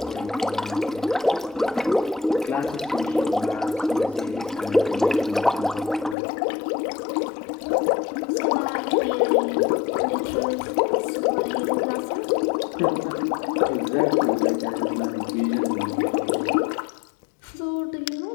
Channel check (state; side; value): drops out; right; at 6.2 s